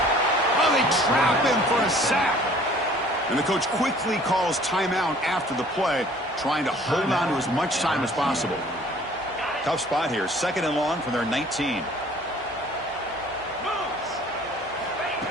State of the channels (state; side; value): normal; both; correlation 0.53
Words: they trap him for a sack. And the coach quickly calls timeout after the play, trying to hold on to as much time as possible. Tough spot here. 2nd and long from their 19.